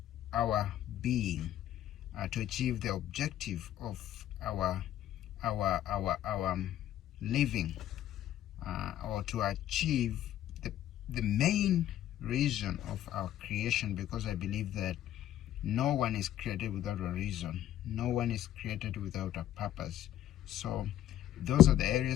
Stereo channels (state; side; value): quieter; right; 12.2 dB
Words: our being, to achieve the objective of our living, or to achieve the main reason of our creation, because I believe that no one is created without a reason. No one is created without a purpose. So those are the